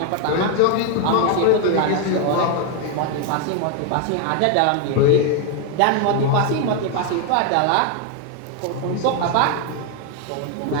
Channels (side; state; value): both; different; correlation 0.01